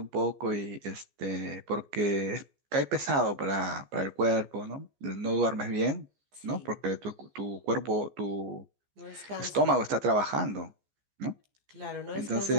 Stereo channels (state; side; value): late; left; 14 ms